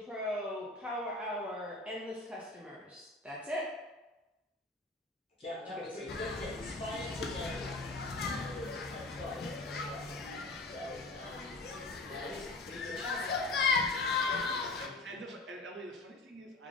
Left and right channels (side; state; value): right; quieter; 3.1 dB